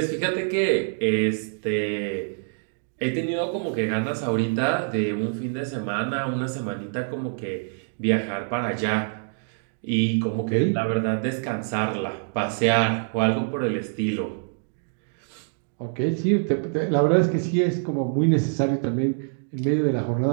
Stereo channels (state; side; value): silent; left; digital silence